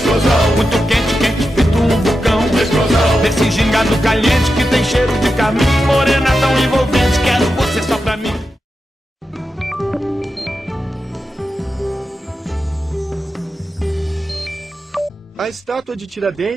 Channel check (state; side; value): normal; both; correlation 0.89